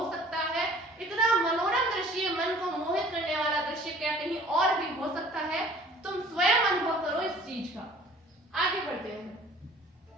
सकता है? इतना मनोरम दृश्य, मन को मोहित करने वाला दृश्य क्या कहीं और भी हो सकता है? तुम स्वयं अनुभव करो इस चीज का। आगे बढ़ते हैं।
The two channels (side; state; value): both; normal; correlation 0.51